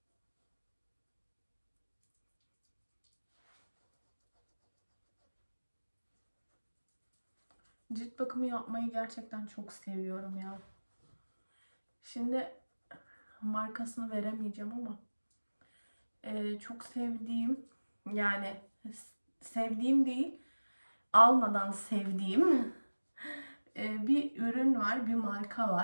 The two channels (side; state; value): both; inverted; correlation -1.00